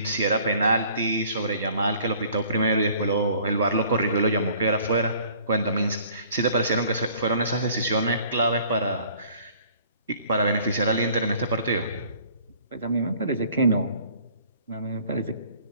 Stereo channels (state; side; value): inverted; both; correlation -0.55